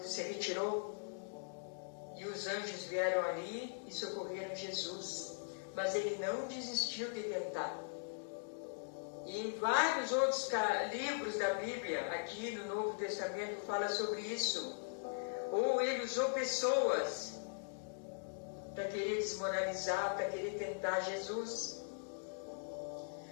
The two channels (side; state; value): right; silent; digital silence